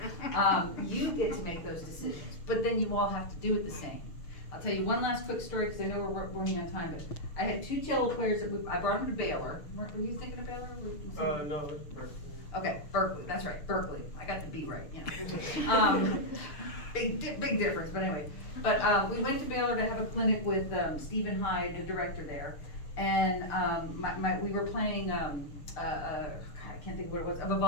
You get to make those decisions, but then you all have to do it the same. I'll tell you one last quick story, because I know we're running on time, but I had 2 cello players I brought them to Baylor. Were you thinking of Baylor? No, it's Berkeley. Okay, Berkeley, that's right, Berkeley. I got the B right, big difference, but anyway. But we went to Baylor to have a clinic with Stephen Hyde, the director there, and we were playing, I can't think of what it was, a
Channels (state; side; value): late; right; 6.7 ms